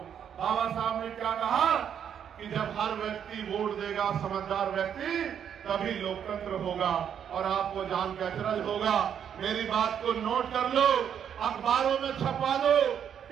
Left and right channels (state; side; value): quieter; left; 8.5 dB